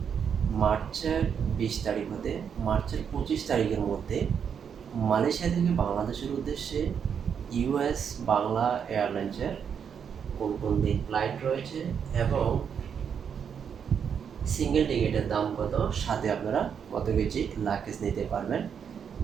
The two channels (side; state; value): left; quieter; 7.4 dB